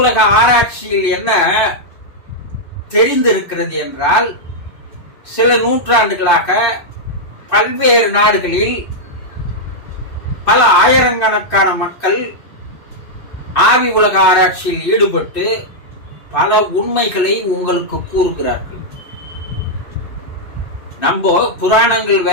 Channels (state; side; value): late; right; 2.6 ms